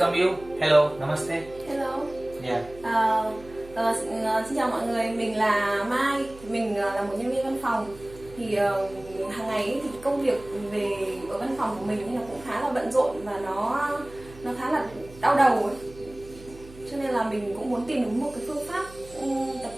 you. Hello, namaste. Hello. Yeah. Xin chào mọi người, mình là Mai, mình là một nhân viên văn phòng. Thì hàng ngày ấy, thì công việc về ở văn phòng của mình là cũng khá là bận rộn và nó khá là đau đầu ấy. Cho nên là mình cũng muốn tìm được một cái phương pháp tập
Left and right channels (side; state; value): right; noise; hum, 19 dB below the sound